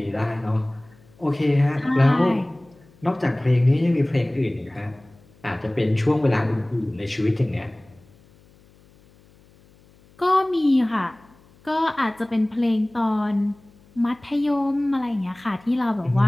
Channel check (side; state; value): left; noise; hum, 29 dB below the sound